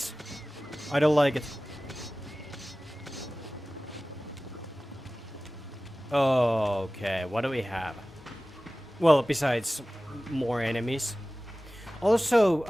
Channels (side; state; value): both; normal; correlation 0.97